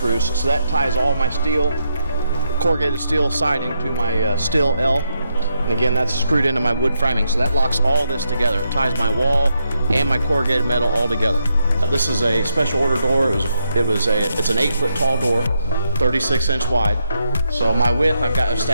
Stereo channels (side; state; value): both; inverted; correlation -0.81